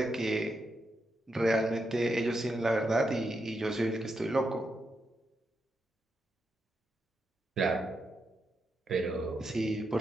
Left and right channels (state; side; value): normal; both; correlation 0.84